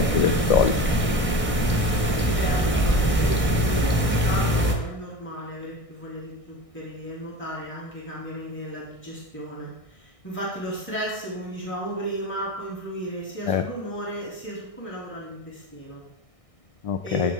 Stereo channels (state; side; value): late; right; 1.6 ms